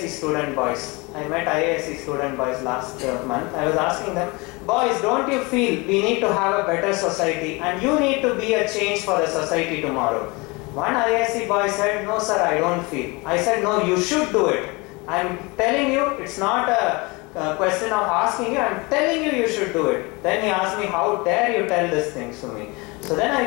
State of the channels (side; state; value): right; quieter; 26.4 dB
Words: student boys. I met IISc student boys last month. I was asking them, boys, don't you feel we need to have a better society and you need to be a change for the society tomorrow? One IISc boy said, no sir, I don't feel. I said, no, you should do it. I'm telling you, it's not a question of asking you, I'm telling you should do it. Then he asked me, how dare you tell these things to me? So then